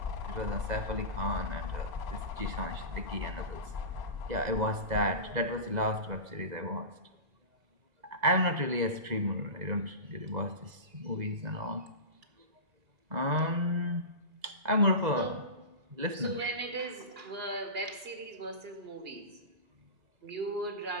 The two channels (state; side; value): late; left; 2.0 ms